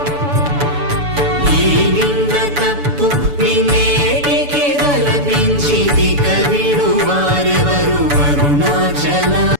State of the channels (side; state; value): left; late; 6.9 ms